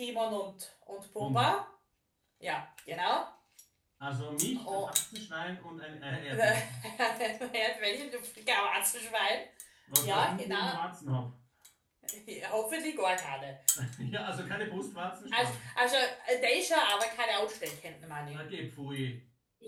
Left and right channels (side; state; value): both; identical; correlation 1.00